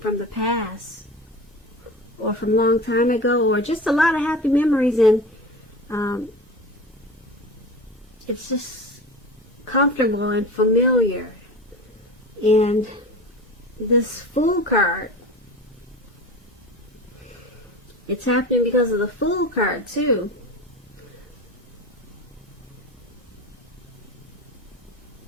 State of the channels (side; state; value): both; normal; correlation 0.32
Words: the past, or from a long time ago, or just a lot of happy memories, and it's just comfortable and familiar. And this Fool card, it's happening because of the Fool card too.